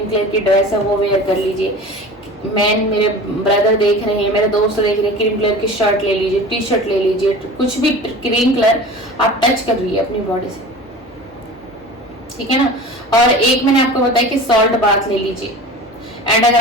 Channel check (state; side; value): normal; both; correlation 0.37